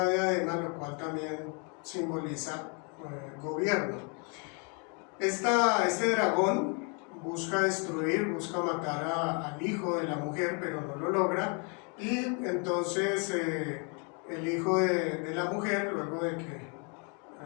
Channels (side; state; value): right; quieter; 36.0 dB